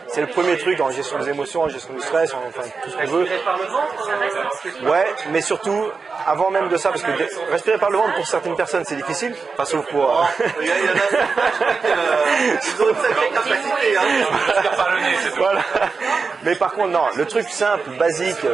C'est le premier truc en gestion des émotions, en gestion du stress, enfin tout ce qu'on veut. Respirer par le ventre? Ouais, mais surtout, avant même de ça, parce que respirer par le ventre pour certaines personnes c'est difficile, enfin sauf pour... Il y en a ils ont une sacrée capacité, hein. Respire par le nez, c'est tout. Voilà. Mais par contre, non, le truc simple, basique,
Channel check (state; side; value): quieter; left; 4.8 dB